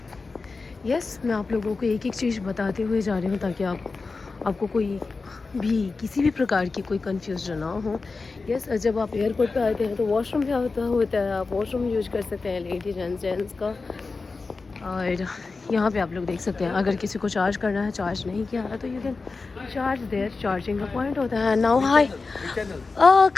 यस, मैं आप लोगों को एक एक चीज़ बताते हुए जा रही हूँ ताकि आपको कोई भी किसी भी प्रकार की कोई कन्फ्यूजन ना हो. यस, जब आप एयरपोर्ट पे आते हैं तो वॉशरूम भी होता है. आप वॉशरूम यूज कर सकते हैं लेडीज एंड जेंट्स का. और यहाँ पे आप लोग देख सकते हैं अगर किसी को चार्ज करना है, चार्ज नहीं किया है तो you can charge there. Charging का पॉइंट होता है. Now hi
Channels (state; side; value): quieter; right; 4.1 dB